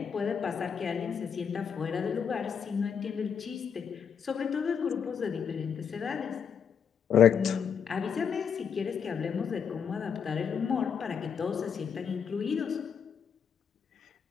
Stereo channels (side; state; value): right; quieter; 7.2 dB